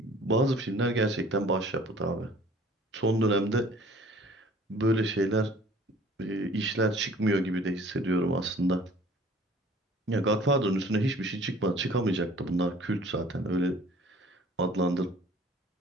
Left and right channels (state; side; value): normal; both; correlation 0.51